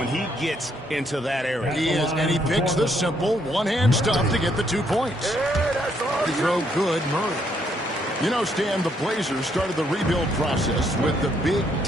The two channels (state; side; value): normal; both; correlation 0.72